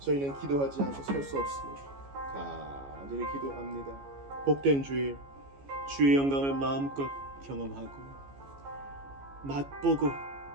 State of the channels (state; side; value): late; left; 14 ms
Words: 기도하지 않고 살 수 없습니다. 간절히 기도합니다. 복된 주일, 주의 영광을 마음껏 경험하고 맛보고